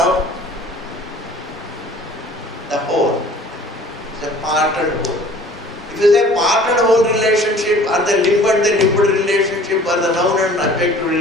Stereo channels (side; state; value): both; normal; correlation 0.49